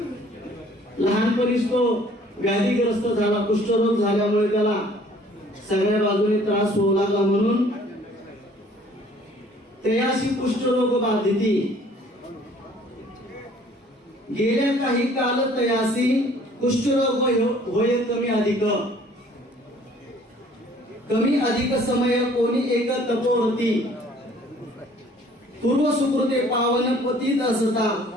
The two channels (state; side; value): normal; both; correlation 0.56